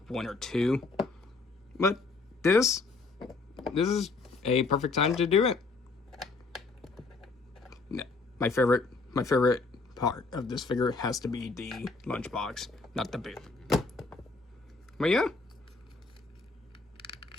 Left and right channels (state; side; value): quieter; right; 3.9 dB